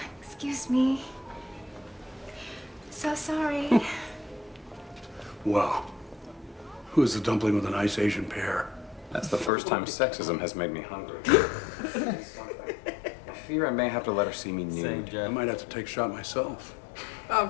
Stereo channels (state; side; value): drops out; right; at 9.5 s